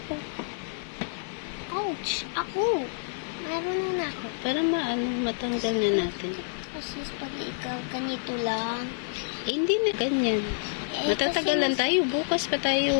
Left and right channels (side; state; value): right; silent; digital silence